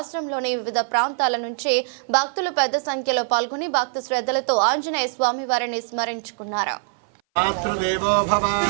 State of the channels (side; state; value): left; silent; 59 dB below the other